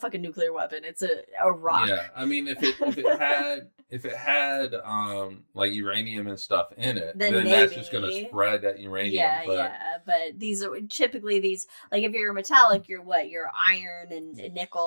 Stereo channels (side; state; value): both; inverted; correlation -1.00